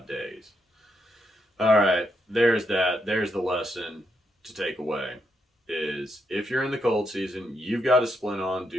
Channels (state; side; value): normal; both; correlation 0.80